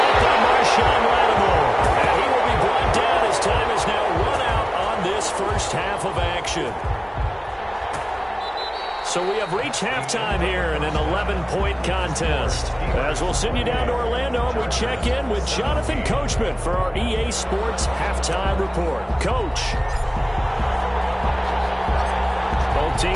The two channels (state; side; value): identical; both; correlation 1.00